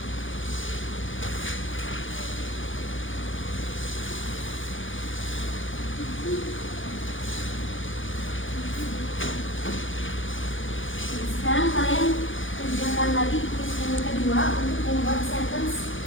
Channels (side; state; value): right; late; 0.57 ms